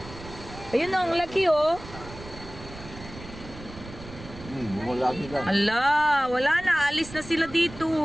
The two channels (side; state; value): right; noise; rumble, 15 dB below the sound